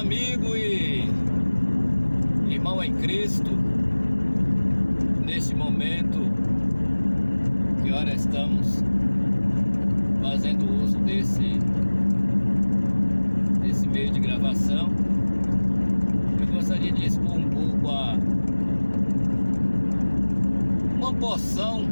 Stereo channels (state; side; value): inverted; both; correlation -1.00